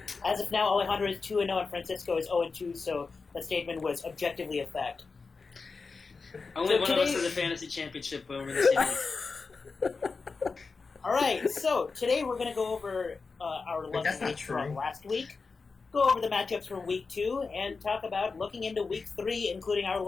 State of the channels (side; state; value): right; quieter; 4.5 dB